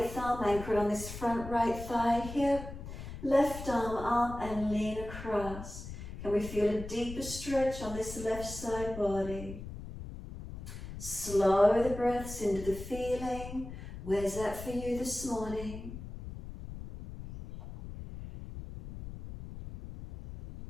thumb anchored on this front right thigh hip. Left arm up and lean across. Can we feel a deeper stretch on this left side body? Slow the breaths into the feeling. Where's that for you this morning?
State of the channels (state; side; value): noise; left; rumble, 10 dB below the sound